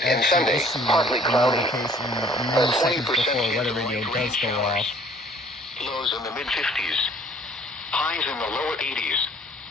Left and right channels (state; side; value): normal; both; correlation 0.55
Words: and actually Sunday, issue partly a cloudy. notification many seconds 20% before weather radio does go off. Lows in the mid-50s. Highs in the lower 80s.